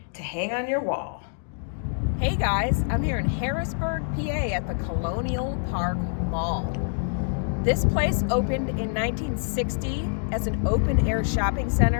to hang on your wall. Hey guys, I'm here in Harrisburg, PA at the Colonial Park Mall. This place opened in 1960 as an open-air shopping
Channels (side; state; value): right; silent; 61 dB below the other